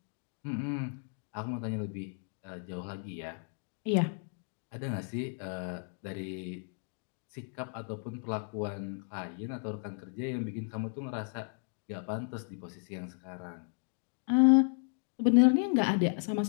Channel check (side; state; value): right; silent; 55 dB below the other